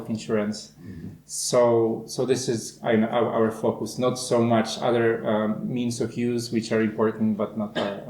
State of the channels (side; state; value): both; identical; correlation 1.00